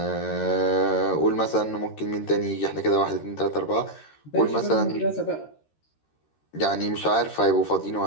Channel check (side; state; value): right; late; 13 ms